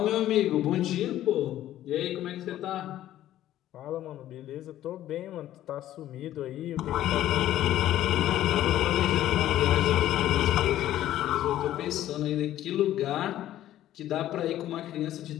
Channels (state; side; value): quieter; right; 13.0 dB